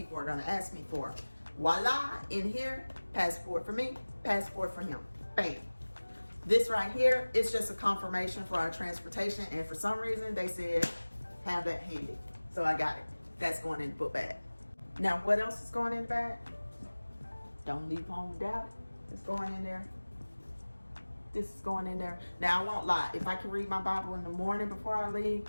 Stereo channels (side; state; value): both; inverted; correlation -1.00